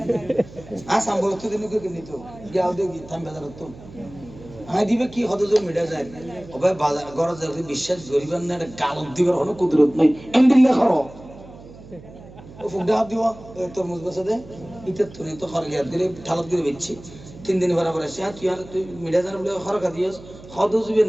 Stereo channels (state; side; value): noise; right; hum, 18 dB below the sound